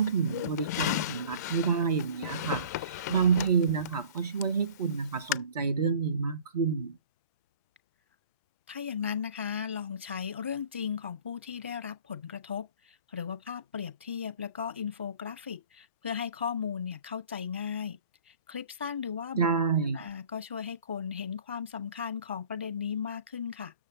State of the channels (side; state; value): both; inverted; correlation -0.47